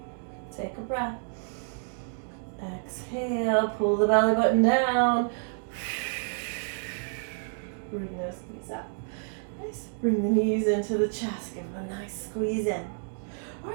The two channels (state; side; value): silent; left; 57 dB below the other